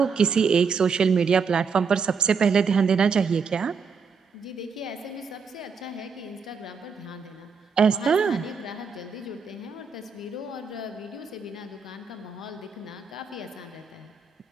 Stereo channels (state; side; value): quieter; left; 5.5 dB